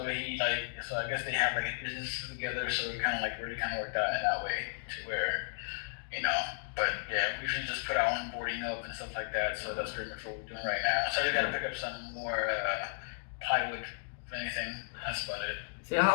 I guess they have like a business together, so we kind of like really kind of worked out in that way to where you know. But yeah, we usually just put our own boarding up and stuff like that. So that's pretty much what we're doing right now. So I just got to pick up some more plywood, if anything. That's about it. See,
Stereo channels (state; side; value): silent; right; digital silence